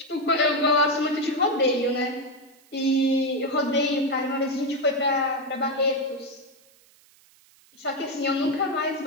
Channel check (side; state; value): right; noise; hiss, 29 dB below the sound